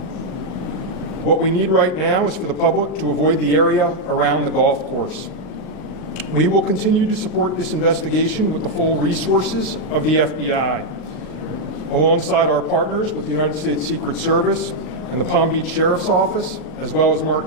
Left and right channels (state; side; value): late; right; 39 ms